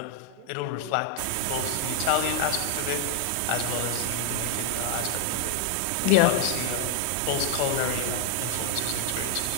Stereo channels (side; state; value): both; different; correlation 0.01